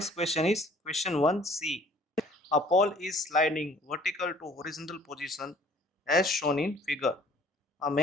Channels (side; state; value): both; normal; correlation 0.55